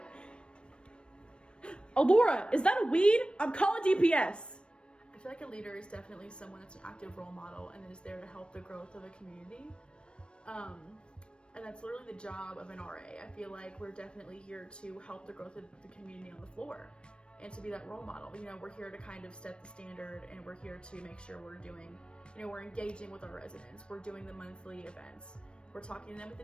Oh, Laura, is that a weed? I'm calling DPS. I feel like a leader is definitely someone that's an active role model and is there to help the growth of a community. And that's literally the job of an RA. I feel like we're definitely here to help the growth of the community on the floor and to be that role model. You know, we're here to kind of set the standard, and we're here to make sure we're doing, you know, we're engaging with our residents. We're doing the monthly events. We're talking to them at the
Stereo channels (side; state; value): right; late; 0.056 ms